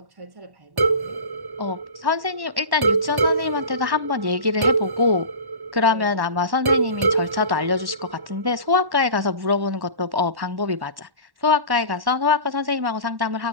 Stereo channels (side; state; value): left; late; 1.1 ms